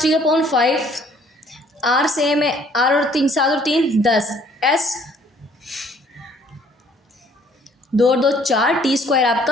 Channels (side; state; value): both; normal; correlation 0.60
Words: r सेम है, r और 3 7 और 3 10, s 2 और 2 4, t²